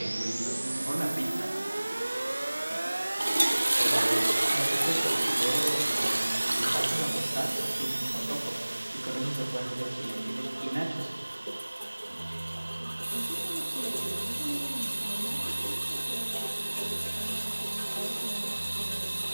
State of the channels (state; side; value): inverted; both; correlation -1.00